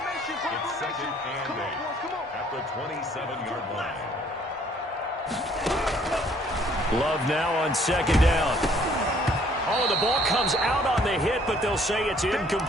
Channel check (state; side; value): normal; both; correlation 0.61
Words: 2nd and 8 at the 27-yard line. Love now on 2nd down. Oh, the ball comes out on the hit, but they'll say it's